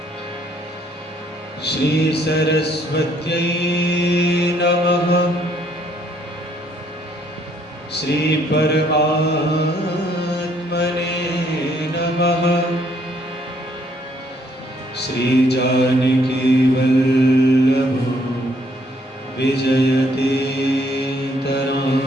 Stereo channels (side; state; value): both; normal; correlation 0.67